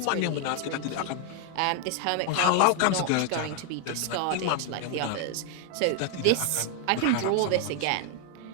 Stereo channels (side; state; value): both; different; correlation 0.00